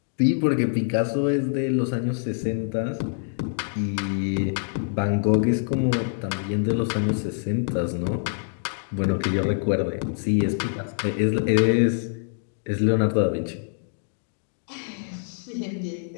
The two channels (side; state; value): right; silent; digital silence